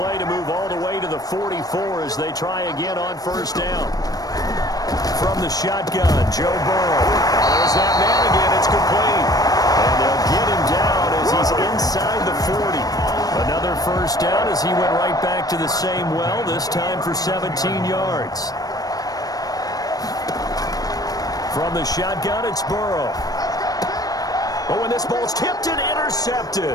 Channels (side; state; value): right; late; 0.18 ms